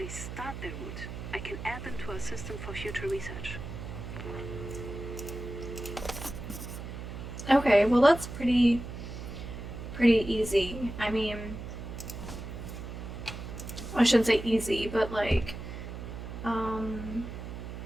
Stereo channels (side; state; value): right; noise; hum, 9 dB below the sound